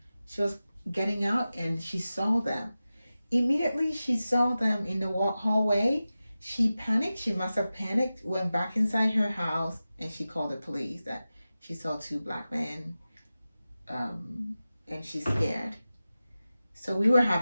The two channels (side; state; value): both; inverted; correlation -0.95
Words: She was getting out and she saw them. Immediately she saw them in the hallway. She panicked. She must have panicked, went back inside her house, and she called the police that she saw two black men, and she's scared. So we were